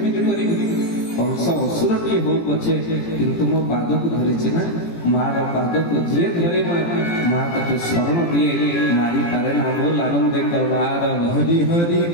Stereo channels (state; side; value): late; right; 17 ms